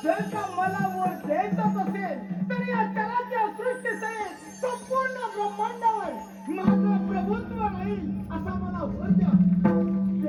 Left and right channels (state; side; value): identical; both; correlation 1.00